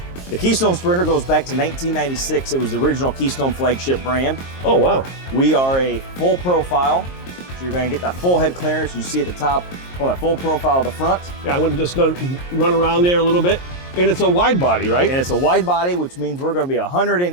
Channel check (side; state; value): right; late; 22 ms